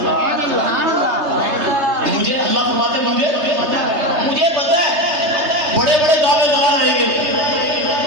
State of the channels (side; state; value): left; late; 3.3 ms